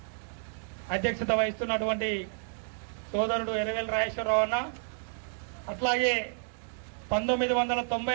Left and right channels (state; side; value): silent; left; digital silence